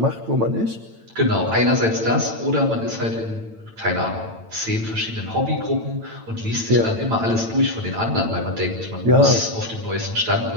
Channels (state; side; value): late; left; 8.9 ms